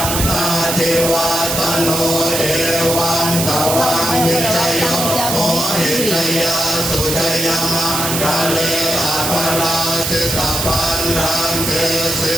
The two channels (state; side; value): noise; right; hiss, 1 dB below the sound